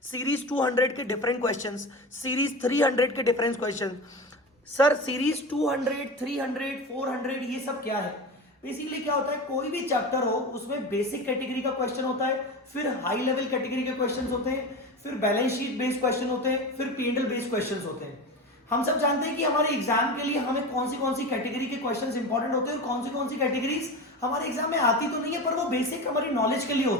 सीरीज 200 के डिफरेंट क्वेश्चंस, सीरीज 300 के डिफरेंट क्वेश्चन। सर सीरीज 200, 300, 400 ये सब क्या है? बेसिकली क्या होता है, कोई भी चैप्टर हो उसमें बेसिक कैटेगरी का क्वेश्चन होता है, फिर हाई लेवल कैटेगरी के क्वेश्चंस होते हैं, फिर बैलेंस शीट बेस्ड क्वेश्चन होते हैं, फिर P&L बेस्ड क्वेश्चंस होते हैं। हम सब जानते हैं कि हमारे एग्जाम के लिए हमें कौन सी कैटेगरी के क्वेश्चंस इंपॉर्टेंट होते हैं और कौन सी कैटेगरीज हमारे एग्जाम में आती तो नहीं है, पर वो बेसिक हमारी नॉलेज के लिए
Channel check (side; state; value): both; normal; correlation 0.26